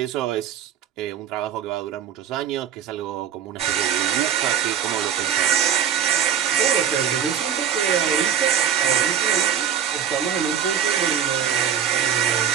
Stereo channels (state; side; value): quieter; left; 8.8 dB